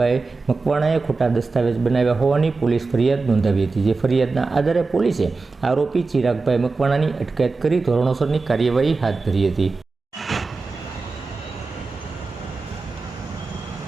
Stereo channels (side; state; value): left; quieter; 4.0 dB